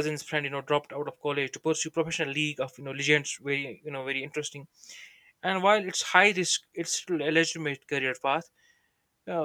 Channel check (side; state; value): both; identical; correlation 1.00